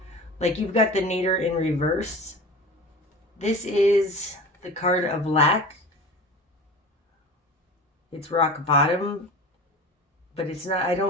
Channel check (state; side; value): normal; both; correlation 0.35